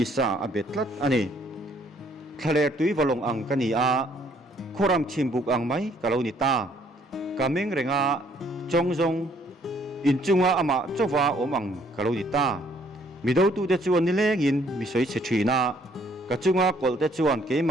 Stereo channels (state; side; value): normal; both; correlation 0.64